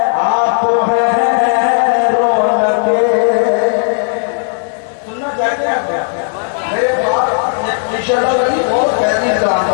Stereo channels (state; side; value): silent; right; digital silence